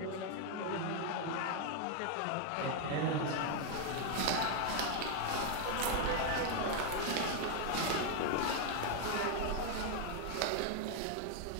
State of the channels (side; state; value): both; different; correlation 0.00